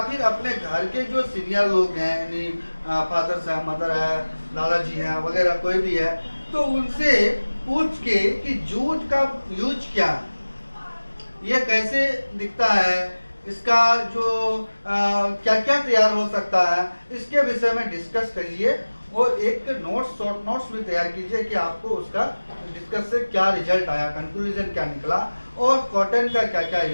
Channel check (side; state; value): both; inverted; correlation -1.00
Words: फिर अपने घर के जो सीनियर लोग हैं, यानी फादर है, मदर है, दादाजी हैं वगैरह कोई भी है, तो उनसे पूछ के कि जूट का यूज क्या है, ये कैसे दिखता है, इसका जो क्या क्या तैयार हो सकता है, इसके विषय में डिस्कस करिए और एक नोट्स शॉर्ट नोट्स भी तैयार कीजिए कि आपको उसका डिस्कस से क्या रिजल्ट आया, कंक्लूजन क्या निकला और कॉटन का क्या क्या